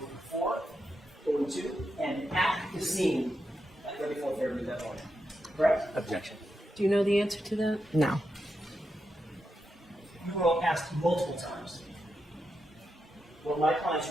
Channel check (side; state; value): both; normal; correlation 0.86